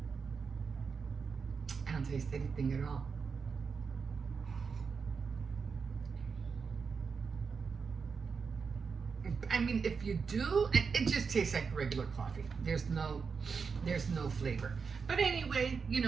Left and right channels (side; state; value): left; quieter; 5.5 dB